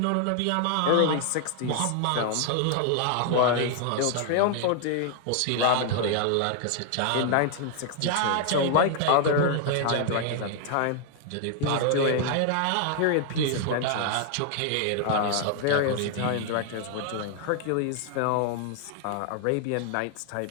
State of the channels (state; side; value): different; both; correlation 0.00